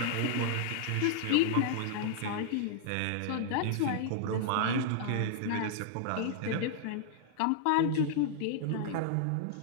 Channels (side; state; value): both; different; correlation -0.01